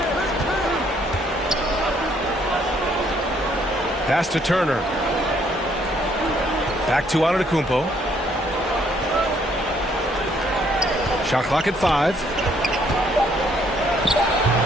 Pass to Turner. Back to Antetokounmpo. Shot clock at 5.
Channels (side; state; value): both; normal; correlation 0.67